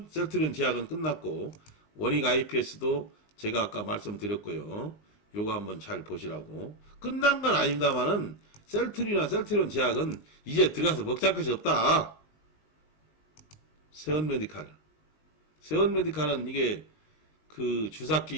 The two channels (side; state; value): right; late; 19 ms